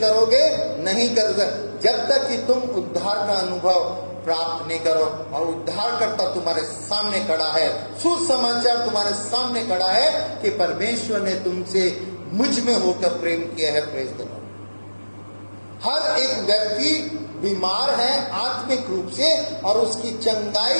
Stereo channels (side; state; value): both; inverted; correlation -1.00